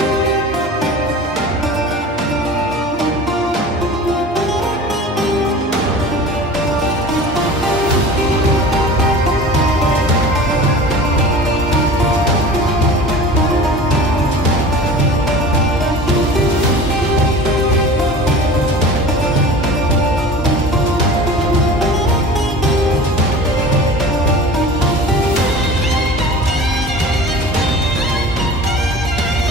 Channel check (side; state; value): both; normal; correlation 0.38